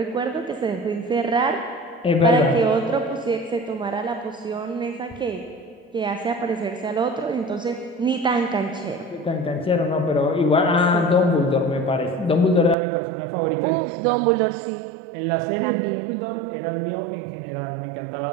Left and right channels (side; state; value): left; drops out; at 12.8 s